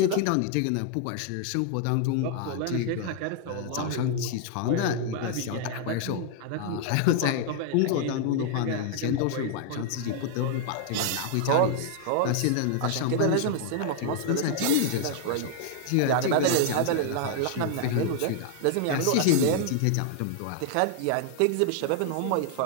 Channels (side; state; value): both; different; correlation 0.00